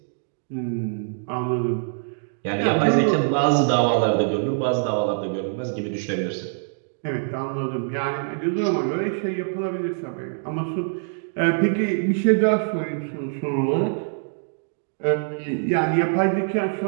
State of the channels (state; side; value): silent; left; digital silence